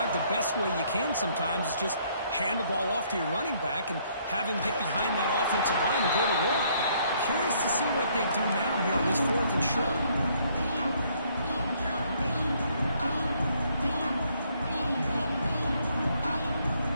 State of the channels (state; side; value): inverted; both; correlation -0.66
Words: the best way you can sometimes is just hand the ball off to your running back and have him get behind that offensive line and go to work. Curious to see what they do now here on this 4th and short.